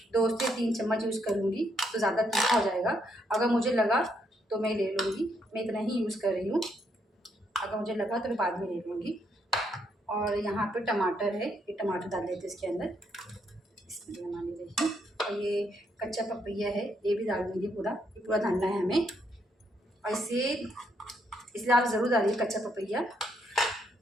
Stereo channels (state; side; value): normal; both; correlation 0.74